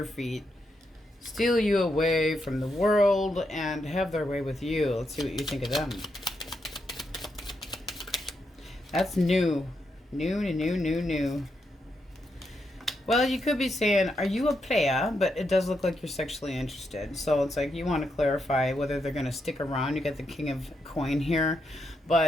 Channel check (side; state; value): both; normal; correlation 0.82